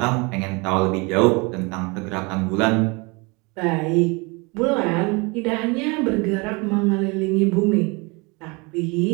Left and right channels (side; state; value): left; quieter; 28.0 dB